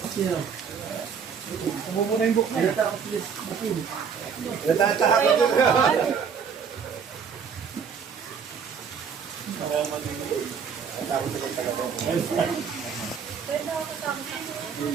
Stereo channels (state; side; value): quieter; left; 6.6 dB